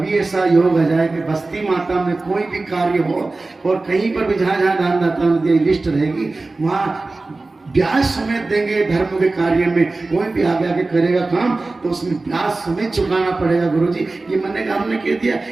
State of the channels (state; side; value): quieter; left; 3.3 dB